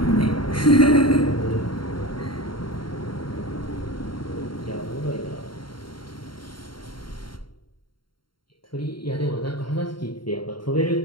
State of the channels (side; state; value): right; late; 0.73 ms